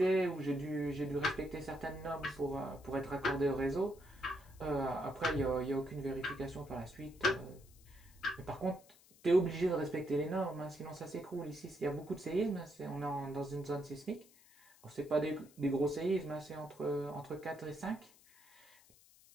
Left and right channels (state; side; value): noise; left; hiss, 26 dB below the sound